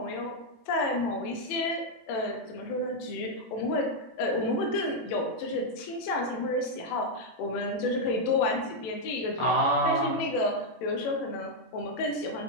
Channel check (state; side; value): late; right; 18 ms